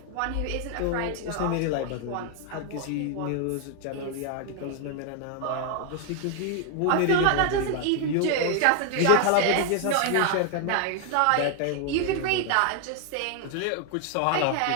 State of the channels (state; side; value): different; both; correlation 0.00